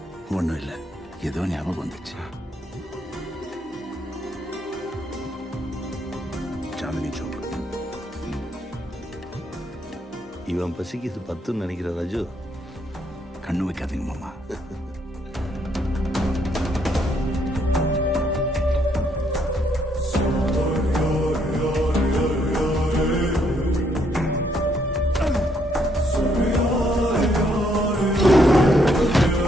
ஒண்ணும் இல்ல, ஏதோ ஞாபகம் வந்துச்சு. சாந்தினி சோக். இவன் பசிக்கு இது 10ன்னு நினைக்கிற ராஜு. கண்ணு வைக்காதீங்க மாமா.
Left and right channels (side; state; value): both; normal; correlation 0.72